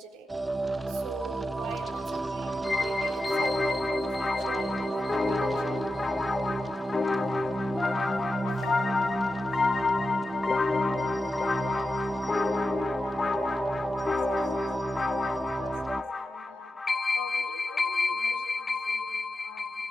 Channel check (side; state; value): both; normal; correlation 0.91